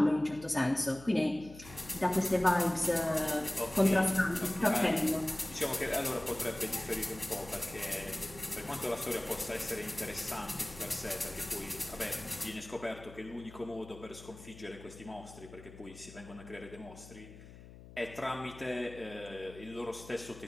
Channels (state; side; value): noise; left; hum, 17 dB below the sound